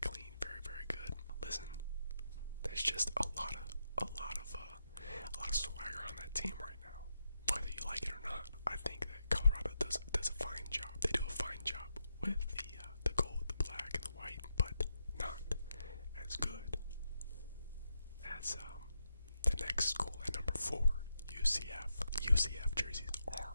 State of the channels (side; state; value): both; inverted; correlation -0.84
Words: clean, very, very good. Listen, there's just a lot of swagger on that team right now. Whether you like it or not, I think that Colorado does a fine job. They do a fine job with the gold, the black, and the white, but not as good as the next school at number 4, UCF. UCF jerseys are